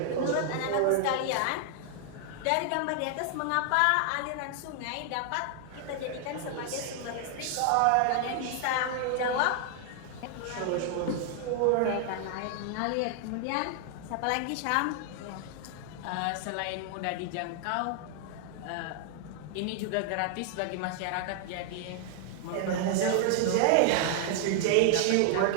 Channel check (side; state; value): both; different; correlation 0.00